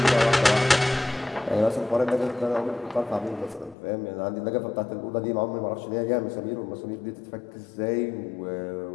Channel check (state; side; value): drops out; right; at 3.8 s